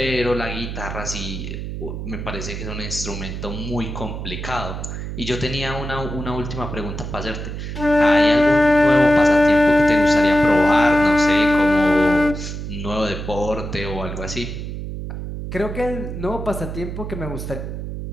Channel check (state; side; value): noise; right; hum, 7 dB below the sound